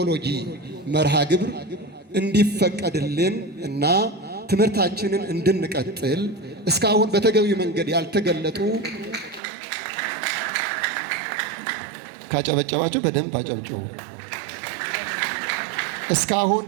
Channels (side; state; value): left; drops out; at 9.4 s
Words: መርሃ ግብር እንዲፈቀድልን እና ትምህርታችንን እንድንቀጥል እስካሁን በተገቢው መንገድ ያልተገለጡ ካጨበጨባችሁ በደንብ አጨብጭቡ። እስካሁን